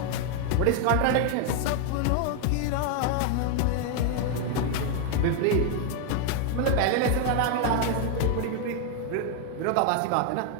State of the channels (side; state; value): both; different; correlation 0.00